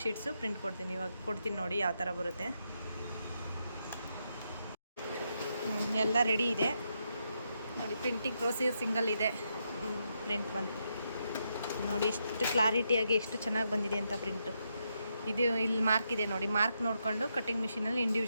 ಶೀಟ್ಸು ಪ್ರಿಂಟ್ ಕೊಡ್ತೀನಿ. ಇವಾಗ ಕೊಡ್ತೀನಿ ನೋಡಿ ಯಾವ ಥರ ಬರುತ್ತೆ. ಎಲ್ಲ ರೆಡಿ ಇದೆ ನೋಡಿ. ಪ್ರಿಂಟಿಂಗ್ ಪ್ರೋಸೆಸ್ ಸಿಂಗಲ್ ಇದೆ. ಪ್ರಿಂಟ್ ಬಂತು ನೋಡಿ, ಎಷ್ಟು ಕ್ಲಾರಿಟಿಯಾಗಿ ಎಷ್ಟು ಚೆನ್ನಾಗಿ ಬಂದಿದೆ ಅಂತ ಪ್ರಿಂಟು. ಇದು ಇಲ್ಲಿ ಮಾರ್ಕ್ ಇದೆ ನೋಡಿ. ಮಾರ್ಕ್ ನೋಡಿಕೊಂಡು ಕಟ್ಟಿಂಗ್ ಮಿಷಿನಲ್ಲಿ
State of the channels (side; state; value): both; inverted; correlation -0.81